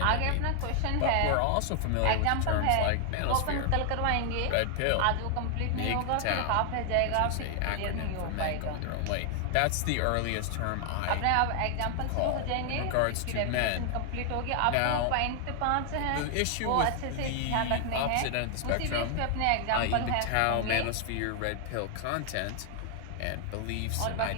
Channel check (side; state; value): both; different; correlation 0.00